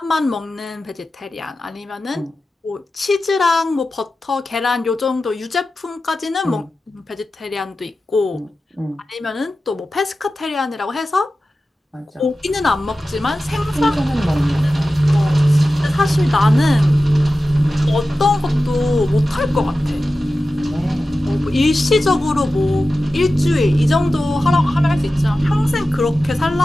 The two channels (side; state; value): both; normal; correlation 0.94